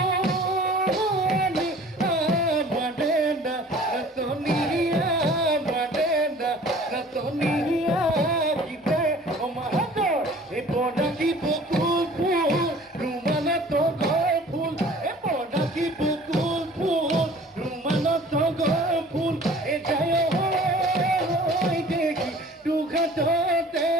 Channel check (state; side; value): normal; both; correlation 0.48